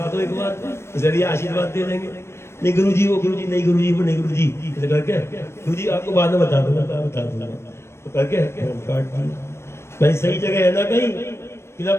दो एक बार, जरिए आशीर्वाद दे देंगे। नहीं गुरुजी वो गुरुजी नहीं, गुरुजी वो नहीं, गुरुजी ऐसे करके गुरुजी आपको बाद में बता दूंगा, बता दूंगा। तो करके फोन काट दिया। भाई सही जगह है ना कहीं,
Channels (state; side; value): late; right; 0.13 ms